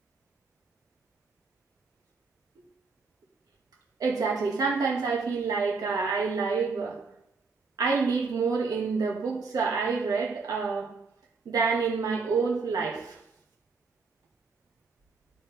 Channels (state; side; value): quieter; left; 4.4 dB